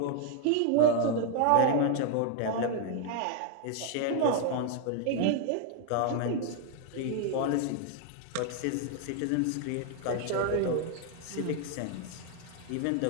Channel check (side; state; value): both; different; correlation 0.00